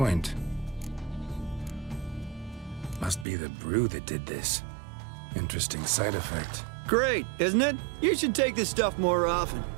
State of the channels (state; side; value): drops out; left; at 3.2 s